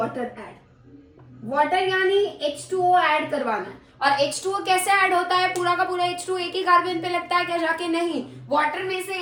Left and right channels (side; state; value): both; identical; correlation 1.00